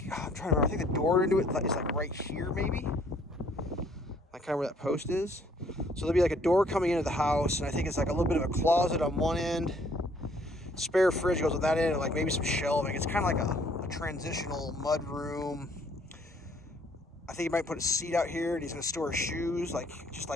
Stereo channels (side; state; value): both; normal; correlation 0.62